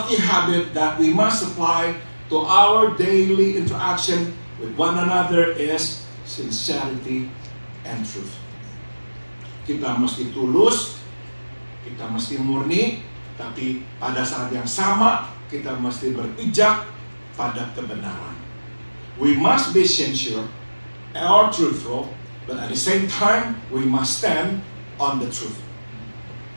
habit that we must apply to our daily interaction with one another is sincerity and truth. Kita mesti tulus, kita mesti murni, tapi pada saat yang sama kita mesti berpijak pada kebenaran. We must be sincere or truthful, but at the same time we must stand on the truth.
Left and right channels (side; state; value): both; inverted; correlation -1.00